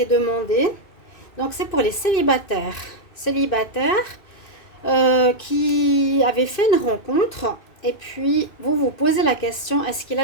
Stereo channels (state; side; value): late; right; 2.6 ms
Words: demandée. Donc c'est pour les célibataires. Qui avaient fait une rencontre et puis vous vous posez la question, est-ce qu'il